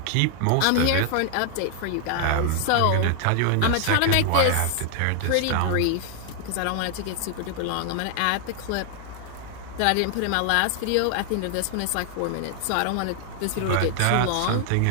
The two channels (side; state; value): both; different; correlation 0.00